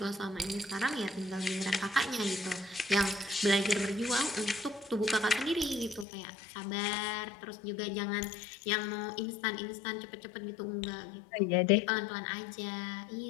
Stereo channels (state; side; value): drops out; right; at 6.1 s